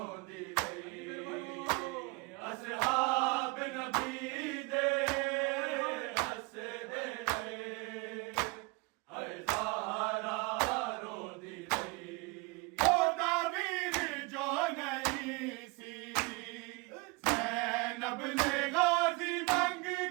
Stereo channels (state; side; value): quieter; left; 26.4 dB